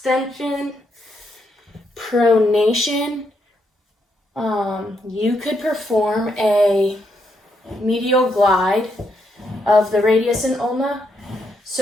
Pronation, you could perform a medial glide of the radius and ulna.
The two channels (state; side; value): normal; both; correlation 0.78